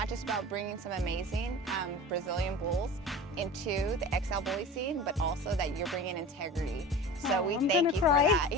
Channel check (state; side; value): normal; both; correlation 0.35